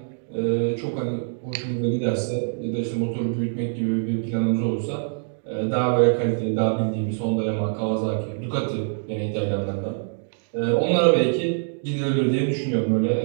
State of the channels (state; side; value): silent; left; digital silence